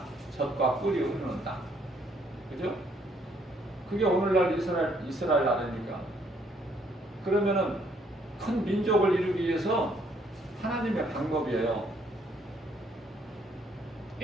젖과 꿀이 흐르는 땅, 그죠? 그게 오늘날 이스라엘 나라입니까? 그러면은 큰 민족을 이루기 위해서 하나님의 방법이에요.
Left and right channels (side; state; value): both; normal; correlation 0.67